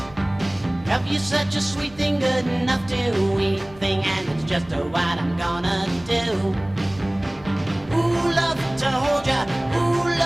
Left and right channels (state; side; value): noise; left; rumble, 22 dB below the sound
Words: Love you such a sweet thing, good enough to eat thing, and it's just what I'm gonna do. Ooh, love to hold ya, ooh,